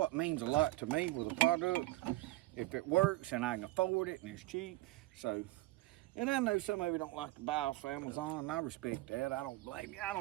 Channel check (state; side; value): quieter; left; 18.6 dB